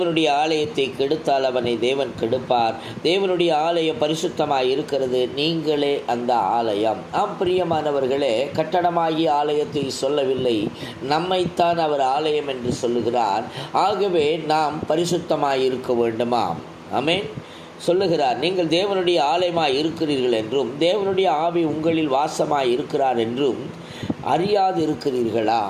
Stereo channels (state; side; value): identical; both; correlation 1.00